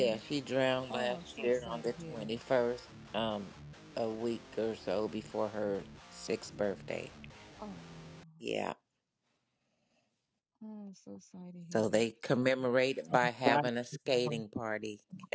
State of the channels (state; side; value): identical; both; correlation 1.00